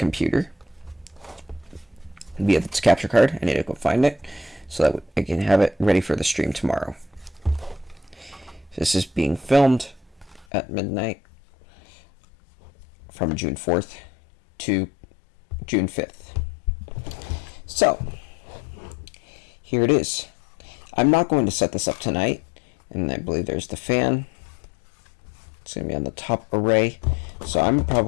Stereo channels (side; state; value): right; drops out; at 10.5 s